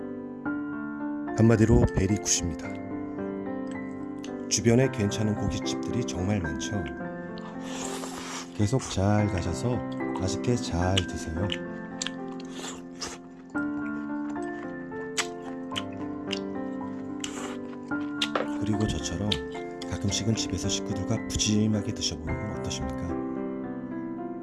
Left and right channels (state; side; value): identical; both; correlation 1.00